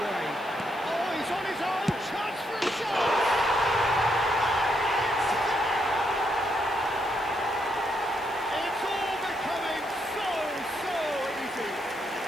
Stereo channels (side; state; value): left; noise; hiss, 23 dB below the sound